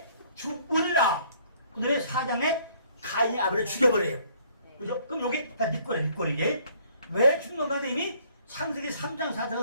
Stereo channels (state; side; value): inverted; both; correlation -0.61